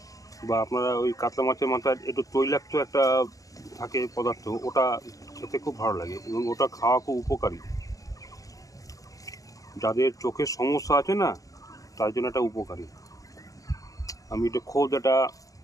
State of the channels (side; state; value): right; late; 0.16 ms